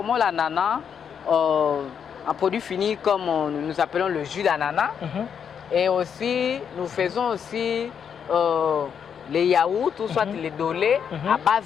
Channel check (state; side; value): quieter; right; 7.5 dB